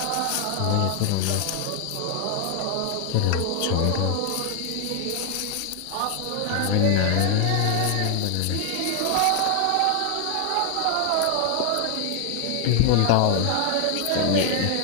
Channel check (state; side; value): different; both; correlation 0.00